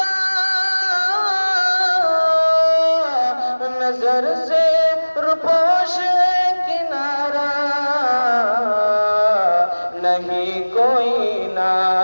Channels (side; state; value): both; inverted; correlation -1.00